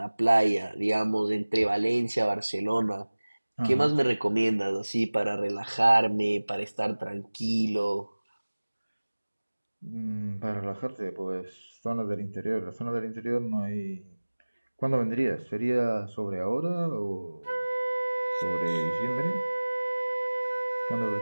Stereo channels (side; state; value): both; inverted; correlation -1.00